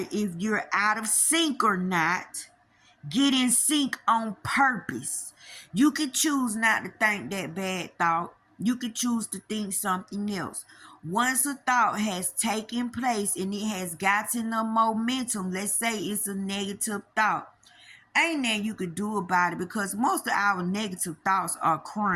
if you're out of sync or not. Get in sync on purpose. You could choose not to think that bad thought. You could choose to think something else. Once a thought has taken place and it has gotten a momentum, let's say it's a negative thought, ain't nothing you could do about it, because most of our negative thoughts are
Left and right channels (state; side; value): identical; both; correlation 1.00